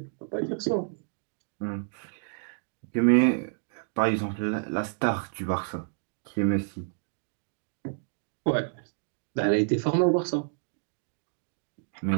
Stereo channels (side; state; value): left; silent; digital silence